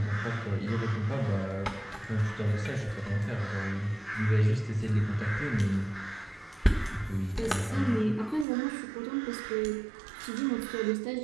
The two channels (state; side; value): drops out; left; at 8.5 s